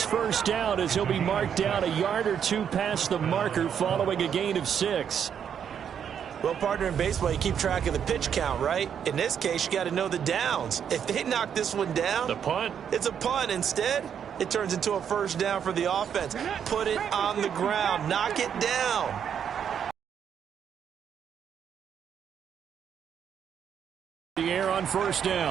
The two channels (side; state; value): left; quieter; 8.2 dB